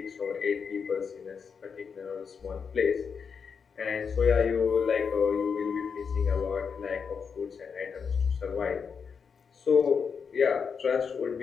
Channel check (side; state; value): right; quieter; 6.1 dB